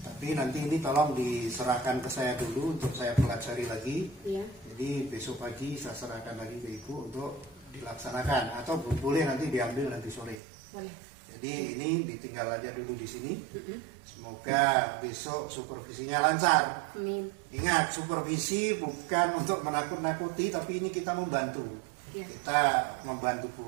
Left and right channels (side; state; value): left; drops out; at 10.4 s